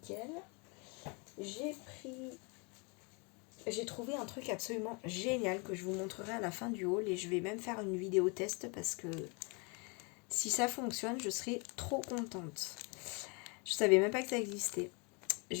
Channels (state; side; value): quieter; right; 32.3 dB